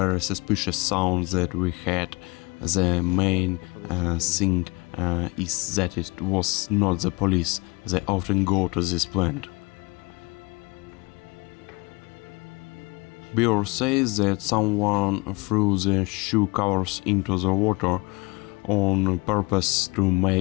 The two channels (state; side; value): quieter; right; 26.8 dB